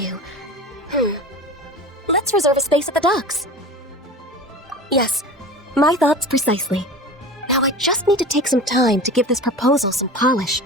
Let's reserve a space at the docks. Yes, my thoughts precisely. Now I just need to take some time to give this proposal some polish.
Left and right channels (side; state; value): both; normal; correlation 0.34